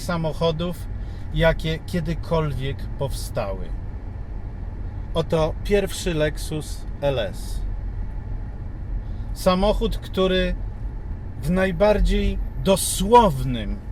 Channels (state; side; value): identical; both; correlation 1.00